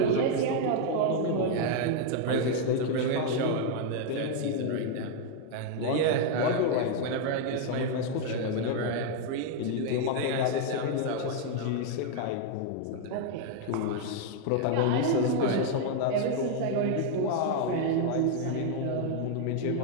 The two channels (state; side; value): different; both; correlation 0.00